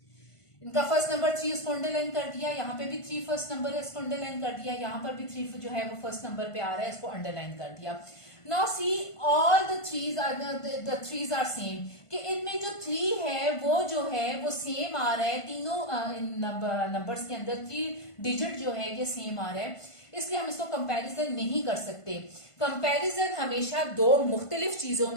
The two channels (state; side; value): late; right; 1.5 ms